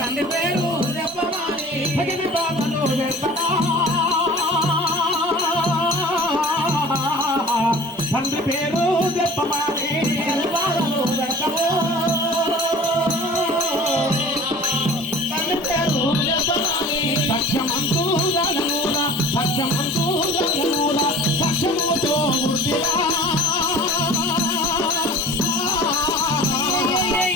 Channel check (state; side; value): normal; both; correlation 0.42